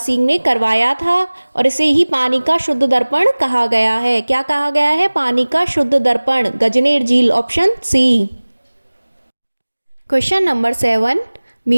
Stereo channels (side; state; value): both; inverted; correlation -1.00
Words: ने करवाया था और इसे ही पानी का शुद्ध दर्पण कहा गया है। क्या कहा गया है? पानी का शुद्ध दर्पण, गजनेर झील, ऑप्शन सी। क्वेश्चन नंबर 7,